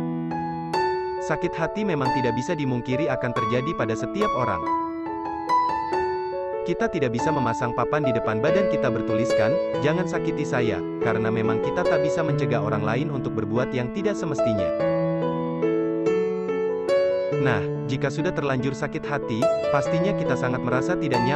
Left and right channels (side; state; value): both; identical; correlation 1.00